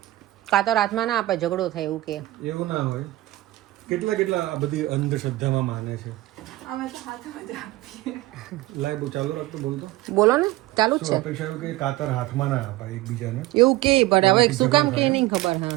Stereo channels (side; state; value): left; quieter; 17.5 dB